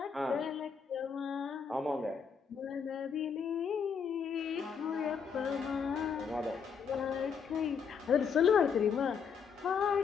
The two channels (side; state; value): right; quieter; 6.4 dB